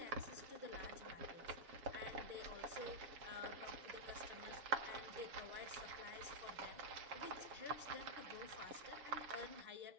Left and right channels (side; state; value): left; late; 7.3 ms